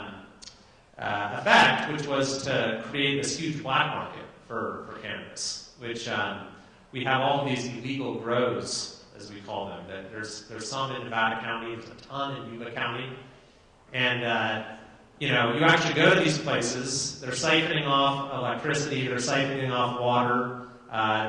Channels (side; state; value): both; identical; correlation 1.00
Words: effect, which was to create this huge black market for cannabis, which we have all these illegal grows, as we call them. There's some in Nevada County, there's a ton in Yuba County, and you actually go to these places, they're siphoning off electricity, they're siphoning off water,